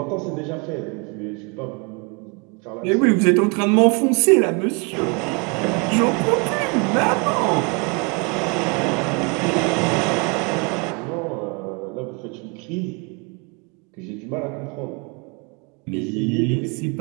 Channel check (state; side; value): quieter; left; 32.2 dB